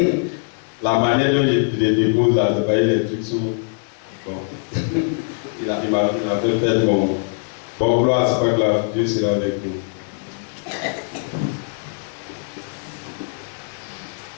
La manière dont je les dépose là, c'est pas les trucs sous. Bon. il m'a fait faire bon gloire, c'est pas grave, Dieu sera avec nous.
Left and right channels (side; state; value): right; silent; digital silence